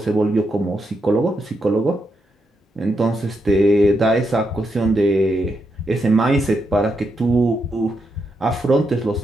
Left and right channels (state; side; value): normal; both; correlation 0.82